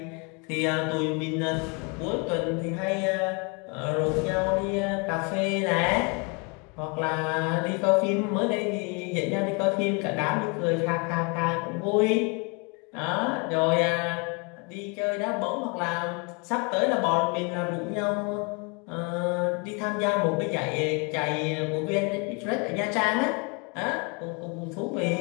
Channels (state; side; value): quieter; right; 31.9 dB